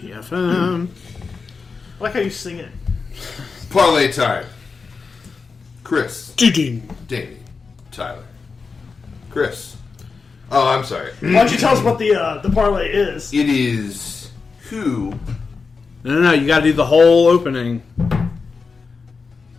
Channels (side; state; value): right; quieter; 4.8 dB